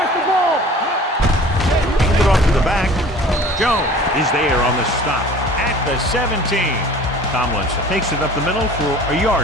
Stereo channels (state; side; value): normal; both; correlation 0.45